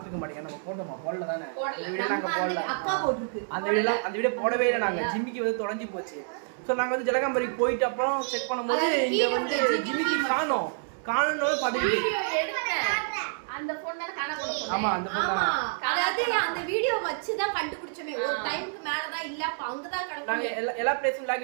மாட்டீங்க, நம்ம போட்டோமா போடல தானே, அந்த வீடியோ நாங்க போடல. அந்த வீடியோ போடவே இல்லை. நாங்க ஜிம்மிக்கு வந்து தொலைஞ்சி போச்சு. ஸோ நாங்கள் வந்து ஜலகாம்பரிக்கு போயிட்டு அப்புறம் செக் பண்ணும்போது இங்கே வந்து ஜிம்மிக்கு காணோம். காணோன்னு அந்த பொண்ணை காணோம். ஆமா அந்த பொண்ணு அதாவது அந்த வீடியோ வச்சு தான் கண்டுபிடிச்சோமே. ஒரு டைம்க்கு மேல தான் இல்ல, அப்ப அங்க தான் கிடக்கு. நாங்க எல்லா பிளேஸும்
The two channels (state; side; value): silent; left; digital silence